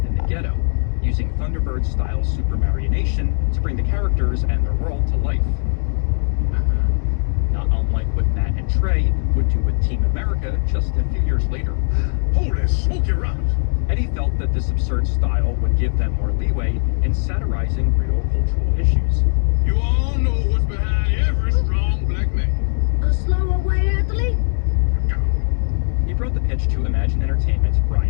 in the ghetto, using Thunderbird-style supermarionation to bring the characters and their world to life. Not unlike what Matt and Trey would do with Team America just a few years later. Holy smoky rockets! Eddie felt that this absurd style would give them more leeway in satirizing real cultural issues. You all know what's behind every strong black man. A slower white athlete? He brought the pitch to Imagine Entertainment's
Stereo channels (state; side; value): silent; right; 64 dB below the other